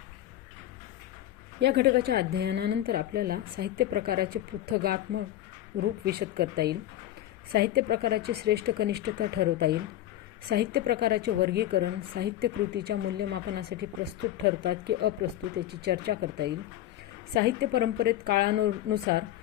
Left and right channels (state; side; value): quieter; right; 13.2 dB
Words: या घटकाच्या अध्ययनानंतर आपल्याला साहित्य प्रकाराचे पृथगात्मक रूप विशद करता येईल, साहित्य प्रकाराची श्रेष्ठ कनिष्ठता ठरवता येईल, साहित्य प्रकाराचे वर्गीकरण साहित्य कृतीच्या मूल्यमापनासाठी प्रस्तुत ठरतात की अप्रस्तुत याची चर्चा करता येईल, साहित्य परंपरेत काळानुसार